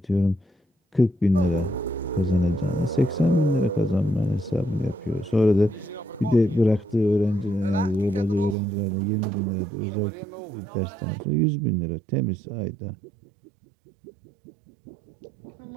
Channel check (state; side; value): drops out; left; at 8.6 s